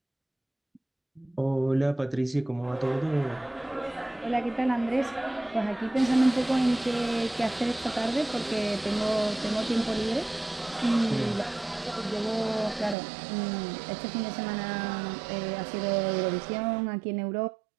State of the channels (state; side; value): drops out; left; at 13.0 s